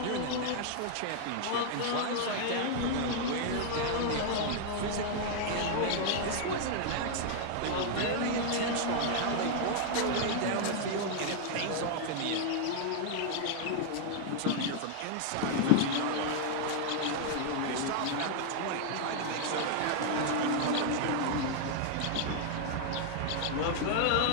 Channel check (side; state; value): both; different; correlation 0.00